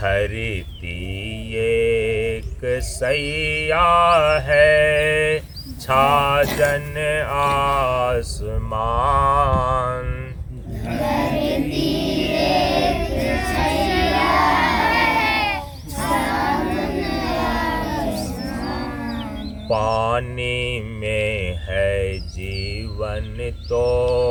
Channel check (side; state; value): both; identical; correlation 1.00